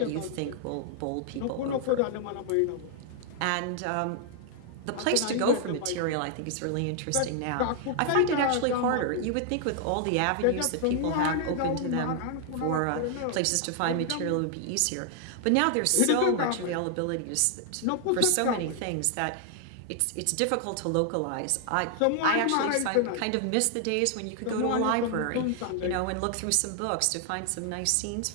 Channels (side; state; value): both; different; correlation 0.00